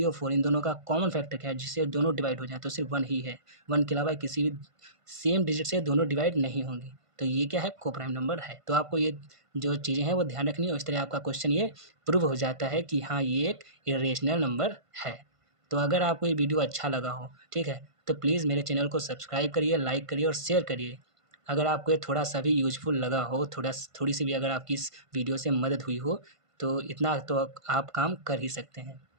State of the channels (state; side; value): late; left; 1.5 ms